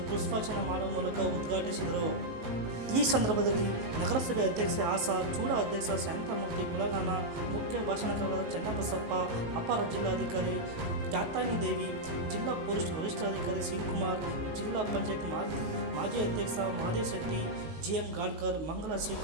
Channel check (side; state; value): left; late; 19 ms